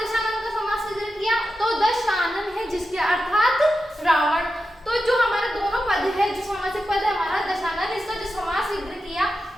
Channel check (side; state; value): both; normal; correlation 0.90